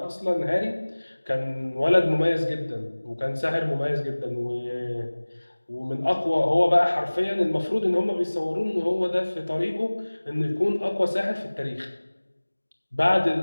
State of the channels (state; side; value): inverted; both; correlation -1.00